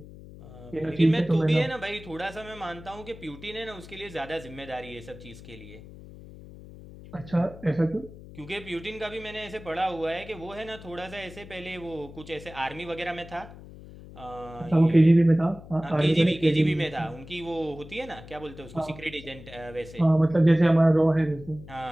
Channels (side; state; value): left; noise; hum, 17 dB below the sound